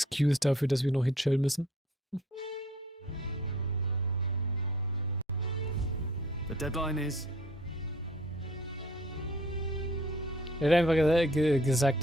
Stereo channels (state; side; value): normal; both; correlation 0.56